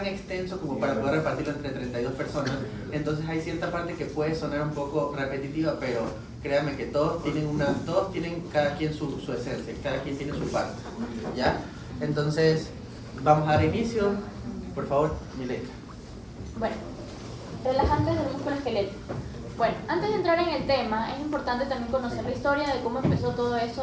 extenso como para poder repartirlo entre 32 personas, entonces hay cierta parte que puede sonar un poco repetitiva, pero créanme que todos tienen cada quien su esencia, cada quien tiene su parte, ¿ya? Entonces, vamos a dar inicio, por favor, Milena. Bueno, relajantes del músculo esquelético. Bueno, antes de entrar en el tema, es importante también conocer la historia de cómo empezó todo esto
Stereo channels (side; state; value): both; identical; correlation 1.00